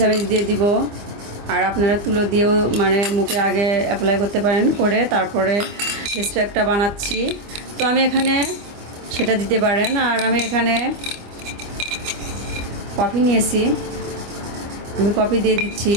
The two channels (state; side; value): late; left; 25 ms